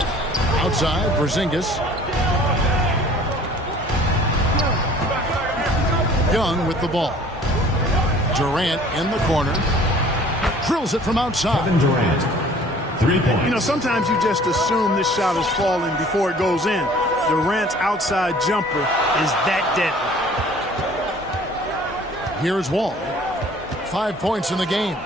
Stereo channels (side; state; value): both; normal; correlation 0.51